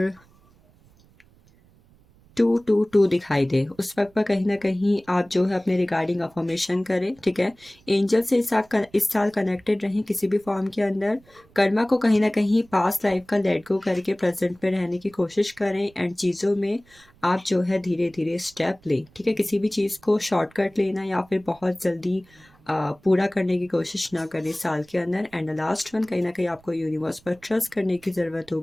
222 दिखाई दे, उस वक्त पर कहीं ना कहीं आप जो है अपने रिगार्डिंग अफर्मेशन करें, ठीक है। एंजल से इस साल कनेक्टेड रहें किसी भी फॉर्म के अंदर। कर्मा को कहीं ना कहीं पास्ट लाइफ का लेट गो करके प्रेजेंट में रहने की कोशिश करें, एंड चीज़ों में आप जो है धीरे धीरे स्टेप लें, ठीक है। किसी भी चीज़ को शॉर्टकट लेना या फिर बहुत जल्दी पूरा करने की कोशिश ना करें इस साल के अंदर। एंड लास्ट वन, कहीं ना कहीं आपको यूनिवर्स पर ट्रस्ट करने की ज़रूरत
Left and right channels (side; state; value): right; noise; rumble, 29 dB below the sound